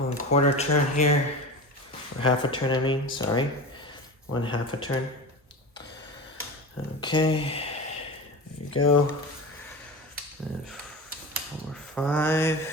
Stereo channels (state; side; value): normal; both; correlation 0.29